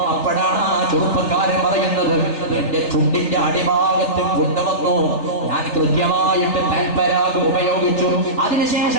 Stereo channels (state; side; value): late; right; 3.3 ms